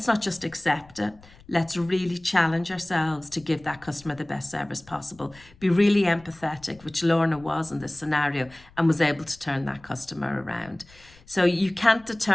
accept it. Let's really challenge ourselves to give that customer the best service possible. Be really empathetic, which Lorna was in this scenario, and was able to turn that customer around. So you can't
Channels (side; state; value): left; noise; rumble, 25 dB below the sound